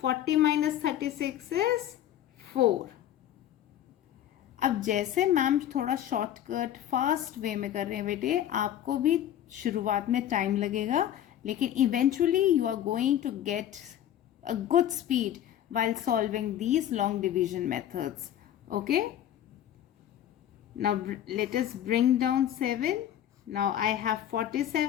40 minus 36 is 4. अब जैसे मैम थोड़ा शॉर्टकट फास्ट वे में कर रहे हैं बेटे, आपको भी शुरुआत में टाइम लगेगा, लेकिन eventually you are going to get a good speed while solving these long division methods. Okay, now let us bring down 7. Now I have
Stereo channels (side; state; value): right; quieter; 11.3 dB